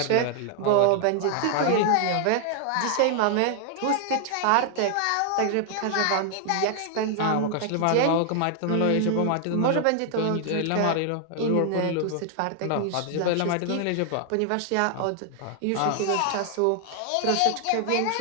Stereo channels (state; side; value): different; both; correlation 0.00